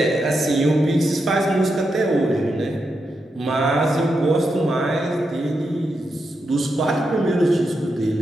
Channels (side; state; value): both; normal; correlation 0.85